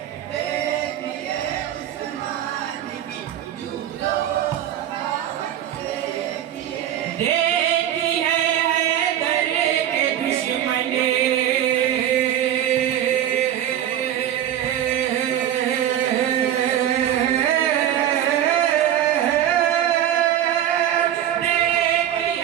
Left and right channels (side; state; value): left; quieter; 11.0 dB